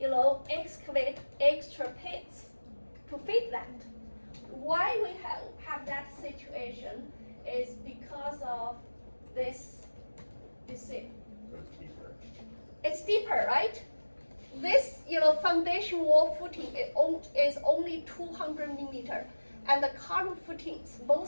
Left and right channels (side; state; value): both; inverted; correlation -1.00